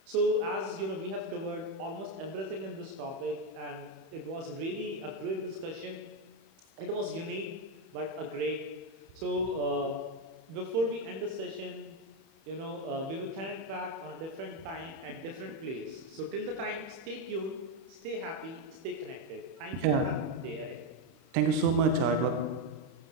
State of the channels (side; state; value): left; late; 31 ms